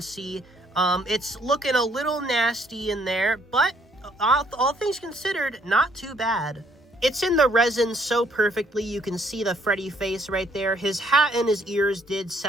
see It's looking a little nasty in there, but all things considered, not too bad. It's in the resin so perfectly, you can see the Freddy face right there. His hat and his ears did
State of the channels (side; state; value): both; normal; correlation 0.66